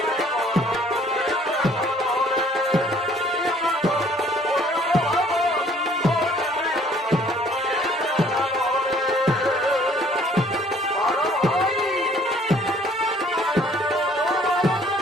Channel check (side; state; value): both; normal; correlation 0.58